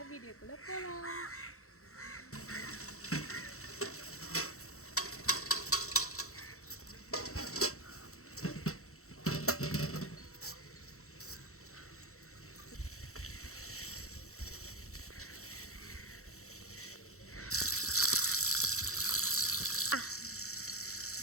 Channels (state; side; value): late; right; 0.64 ms